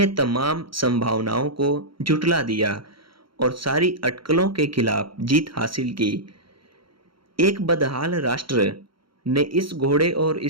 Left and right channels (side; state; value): left; late; 0.73 ms